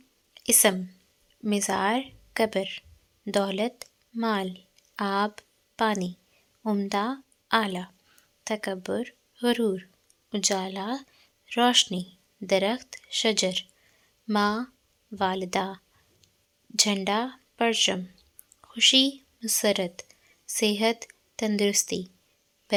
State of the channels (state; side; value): identical; both; correlation 1.00